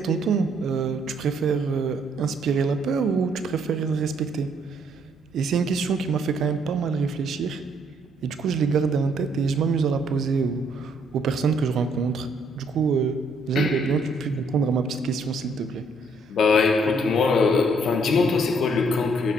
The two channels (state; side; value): normal; both; correlation 0.68